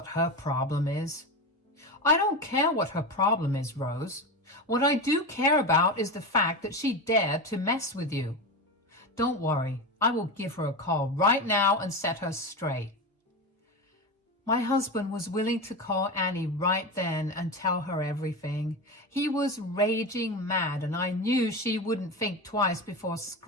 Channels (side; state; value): both; normal; correlation 0.21